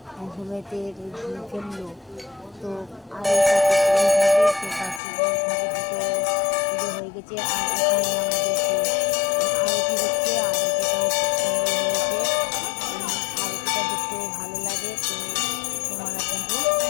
ঘুমেতে ফেললো, তো আর পুজো হয়ে গেছে। আর এখানে আমাদের আরতি হচ্ছে, আরতিটাও খুব সুন্দর হয়েছে, আরতিটা দেখতেও ভালো লাগে। তো তোমরা দেখো।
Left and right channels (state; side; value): drops out; right; at 5.0 s